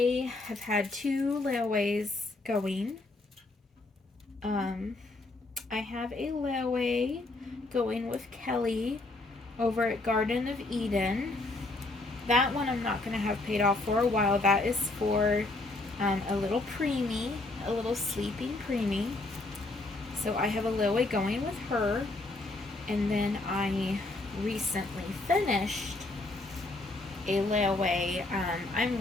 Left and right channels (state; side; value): quieter; right; 3.0 dB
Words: have had 2 layaways going. I have a layaway going with Kelly over at Garden of Eden. That one I'm not going to have paid off for a while. That is for a little preemie, a little sleeping preemie. So I have a layaway going with her. And then I recently finished a layaway. I'm